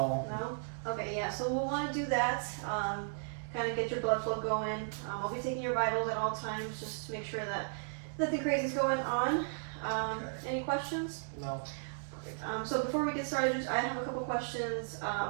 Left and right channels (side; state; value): left; silent; 54 dB below the other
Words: No? Okay, yeah, so we'll want to do that, kind of get your blood flow going. I'll be taking your vitals at all times just to make sure that nothing crazy is going on. Okay. Any questions? No. Perfect. So before we get started, I have a couple questions.